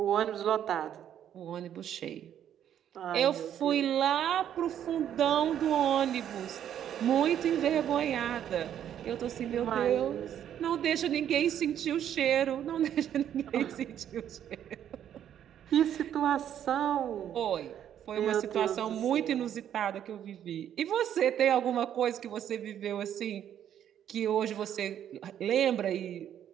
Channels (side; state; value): left; quieter; 10.1 dB